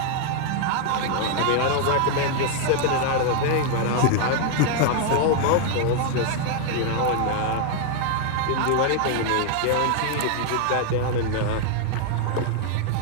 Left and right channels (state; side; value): different; both; correlation 0.00